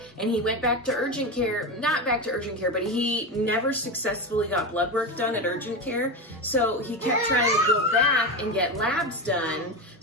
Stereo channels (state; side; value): normal; both; correlation 0.17